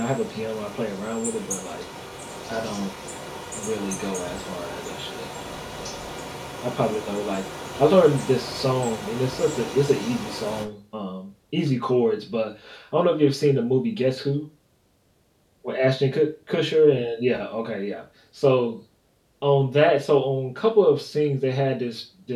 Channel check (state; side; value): identical; both; correlation 1.00